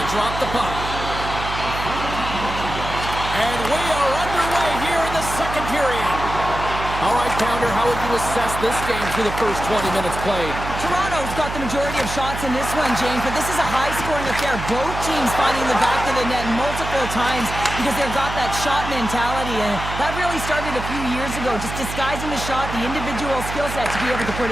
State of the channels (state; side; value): noise; right; hum, 7 dB below the sound